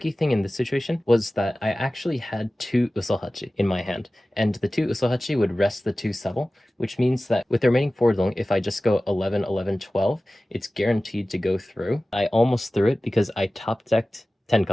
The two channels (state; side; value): normal; both; correlation 0.97